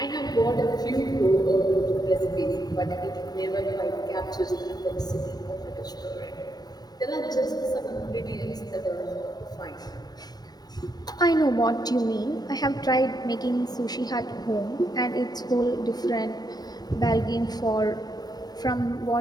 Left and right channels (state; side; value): late; right; 0.19 ms